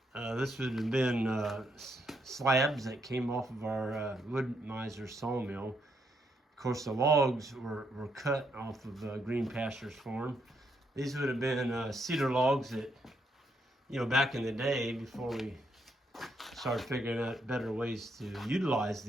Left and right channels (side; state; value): both; normal; correlation 0.76